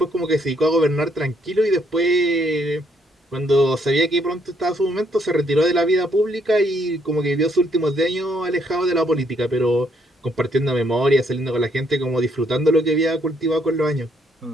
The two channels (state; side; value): normal; both; correlation 0.70